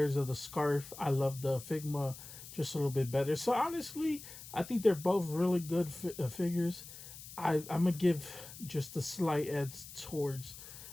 of the scarf. I love the Figma just a little bit better. So honestly, I think they're both really good figures. I'm gonna give just a slight edge towards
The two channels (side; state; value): left; noise; hiss, 14 dB below the sound